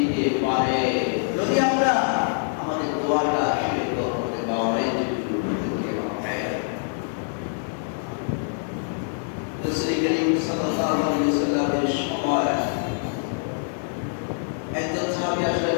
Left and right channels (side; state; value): right; silent; digital silence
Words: পারে যদি আমরা আমাদের দোয়াটা শিরক করতে পারি। রাসূল করিম সাল্লাল্লাহু আলাইহি ওয়াসাল্লামের সময় একজন সাহাবী আসলেন,